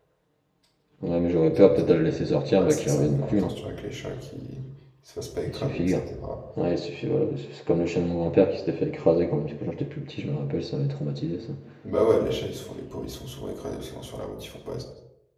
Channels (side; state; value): both; identical; correlation 1.00